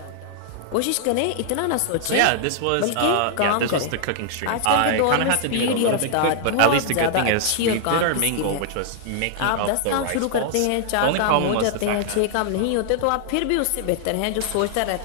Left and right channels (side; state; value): both; different; correlation -0.01